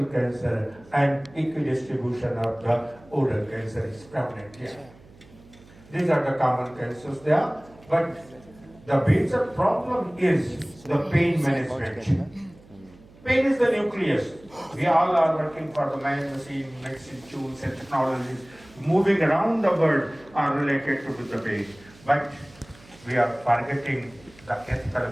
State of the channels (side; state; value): right; noise; hum, 24 dB below the sound